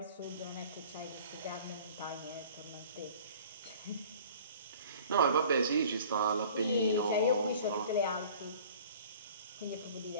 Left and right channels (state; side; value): inverted; both; correlation -0.48